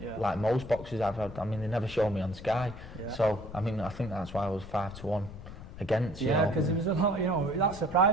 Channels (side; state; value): left; noise; rumble, 13 dB below the sound